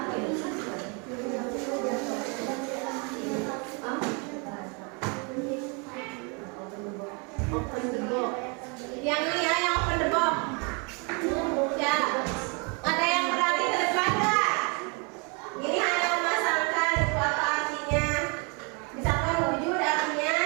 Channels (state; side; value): quieter; left; 33.4 dB